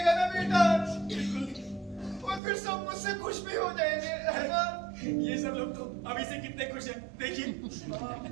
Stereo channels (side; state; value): left; drops out; at 2.4 s